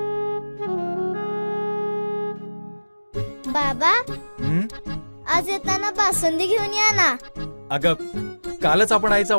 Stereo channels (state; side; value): inverted; both; correlation -1.00